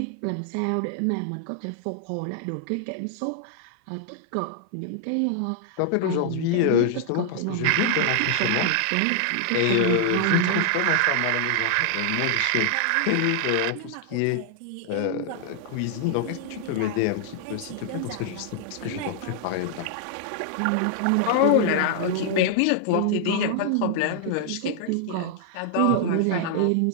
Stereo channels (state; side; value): different; both; correlation 0.00